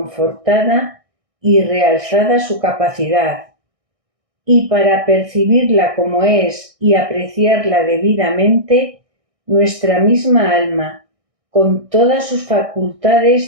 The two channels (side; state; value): left; late; 1.6 ms